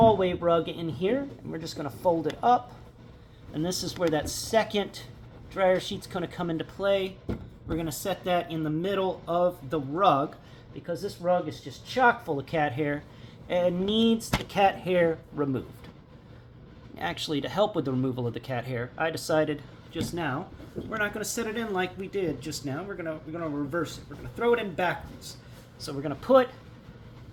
rug in here, and we're just going to fold it up. And this is where that second dryer sheet's going to come into play. We're going to set that in the middle of the rug because this rug is just chock full of cat hair and needs the cat hair removed. Actually, to help with the removal of the cat hair, I decided just now we're not going to set it in like we did just now. We're going to reverse it. We're going to throw it in backwards. So we're going to put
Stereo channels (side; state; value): both; identical; correlation 1.00